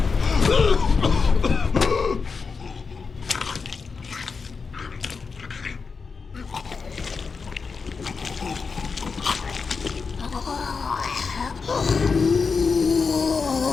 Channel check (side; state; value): right; quieter; 5.0 dB